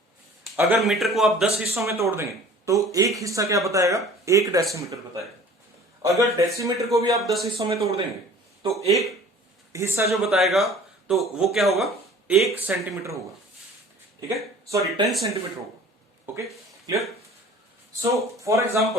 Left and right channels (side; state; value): both; normal; correlation 0.47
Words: अगर मीटर को आप 10 हिस्सों में तोड़ देंगे तो एक हिस्सा क्या बताएगा, 1 डेसीमीटर बताएगा। अगर डेसीमीटर को भी आप 10 हिस्सों में तोड़ देंगे तो एक हिस्सा जो बताएगा तो वो क्या होगा, 1 सेंटीमीटर होगा, ठीक है, सॉरी 10 सेंटीमीटर होगा, okay, clear. So for